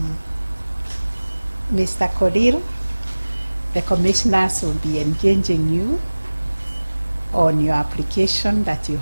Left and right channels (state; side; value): inverted; both; correlation -1.00